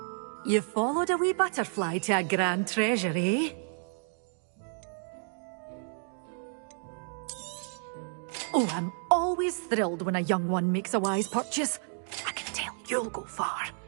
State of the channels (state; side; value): silent; left; 57 dB below the other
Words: You followed a wee butterfly to a grand treasure, eh? Oh, I'm always thrilled when a young one makes a wise purchase. I can tell you'll go far.